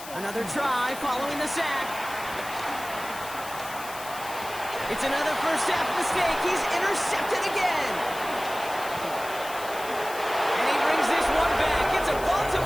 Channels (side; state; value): left; noise; hiss, 13 dB below the sound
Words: Another try following the sack. It's another first half mistake. He's intercepted again. And he brings this one back. It's a